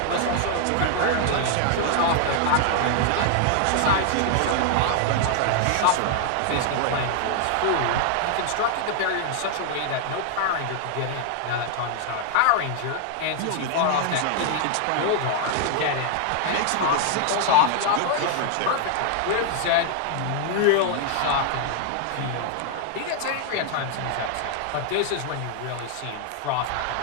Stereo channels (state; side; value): different; both; correlation 0.00